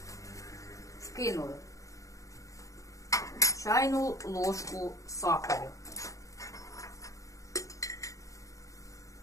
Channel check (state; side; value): late; right; 0.16 ms